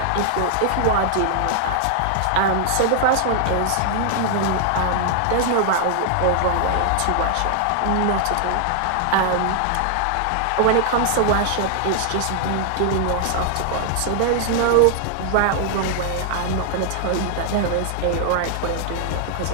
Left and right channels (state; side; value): different; both; correlation 0.00